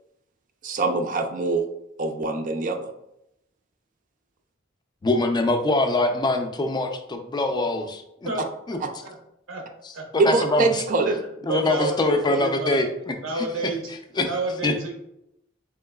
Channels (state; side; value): normal; both; correlation 0.28